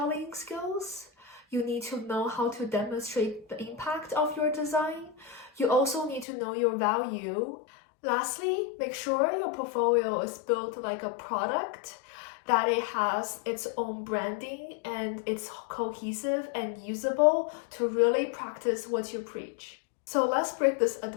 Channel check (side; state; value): right; drops out; at 6.2 s